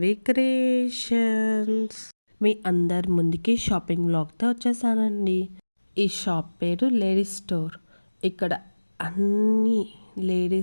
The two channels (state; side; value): inverted; both; correlation -1.00